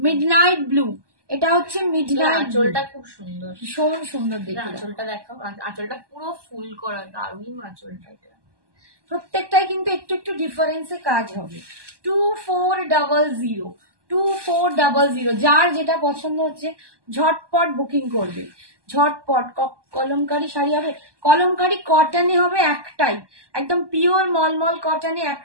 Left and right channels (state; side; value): late; left; 1.2 ms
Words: ব্লু। এটা হচ্ছে মিডনাইট, আঁচলটা খুব সুন্দর, ভীষণ সুন্দর দেখতে। আঁচলটা দেখো, আঁচলটা পুরো ফুল করা, দারুণ আঁচলটা। প্রত্যেকটাই কিন্তু একটু একটু ডিফারেন্সে কাজ হবে। 2400 যার যেটা পছন্দ হচ্ছে ঝটপট বুকিং করবে, ঝটপট। কলমকারি শাড়ি হবে, কলমকারি কটনে হবে একটাই, একদম পিওর মলমল কটনে